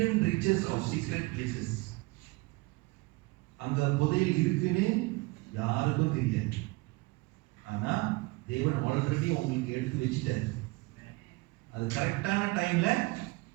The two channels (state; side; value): quieter; left; 23.7 dB